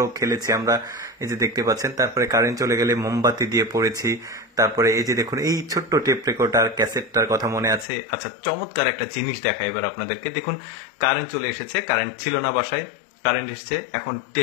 খেলেছি আমরা, এই যে দেখতে পাচ্ছেন। তারপরে কারেন্ট চলে গেলে মোমবাতি দিয়ে পড়েছি। তারপরে এই যে দেখুন, এই ছোট্ট টেপ রেকর্ডার ক্যাসেটটার কথা মনে আছে? আচ্ছা, চমৎকার একটা জিনিস দেখাই এবার আপনাদেরকে। দেখুন, কারেন্ট চলে এসেছে, কারেন্ট ছিল না বাসায়, কারেন্ট এসেছে, এখন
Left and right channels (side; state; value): right; drops out; at 7.9 s